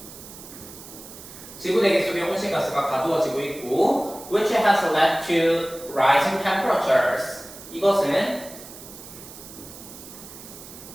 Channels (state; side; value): noise; right; hiss, 16 dB below the sound